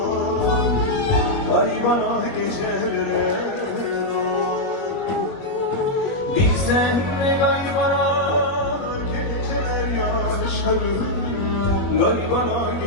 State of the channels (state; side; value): late; right; 21 ms